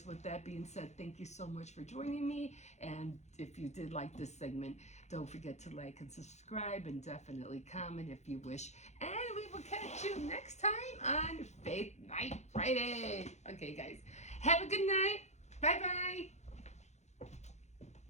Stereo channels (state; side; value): late; right; 0.33 ms